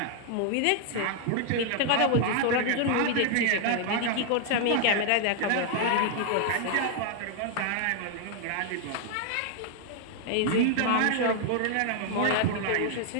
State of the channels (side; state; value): both; different; correlation 0.00